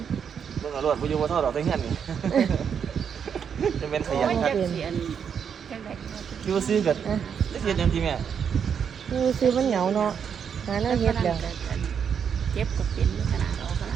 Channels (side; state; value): left; quieter; 7.4 dB